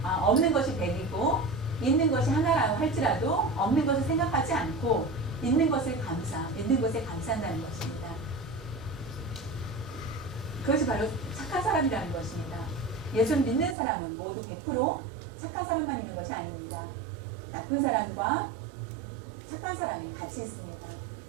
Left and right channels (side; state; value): left; drops out; at 13.8 s